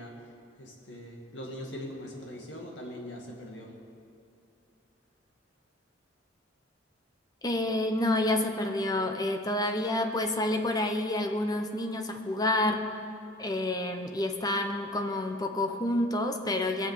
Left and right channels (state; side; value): normal; both; correlation 0.47